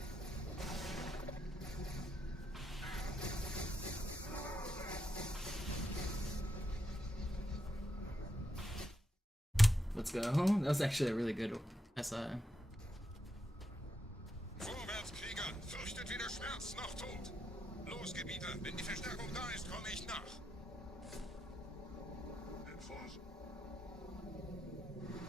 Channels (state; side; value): normal; both; correlation 0.83